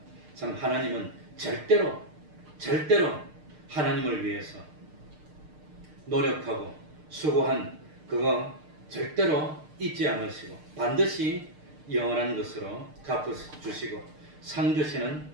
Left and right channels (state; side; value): late; left; 6.6 ms